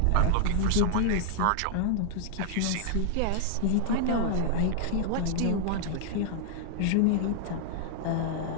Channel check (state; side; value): different; both; correlation -0.01